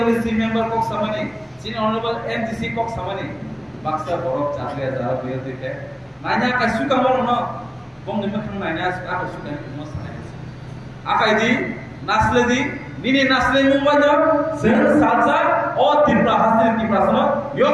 member kok samani sini honorable MDC kok samani baksa borok chakre jara biar dite nanya kasu kamar no bong nimah khang nanya kasu kan mo sanai akai di nasle di nini nasle mumbaja sen salsa o Tripura hasil Tripura sana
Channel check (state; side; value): identical; both; correlation 1.00